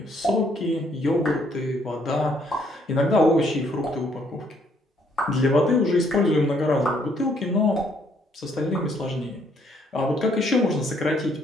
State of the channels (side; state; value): both; normal; correlation 0.68